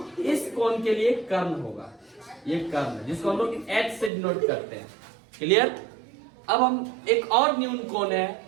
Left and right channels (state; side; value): drops out; left; at 4.1 s